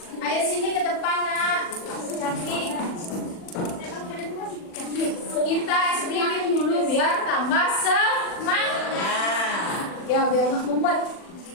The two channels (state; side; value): late; right; 40 ms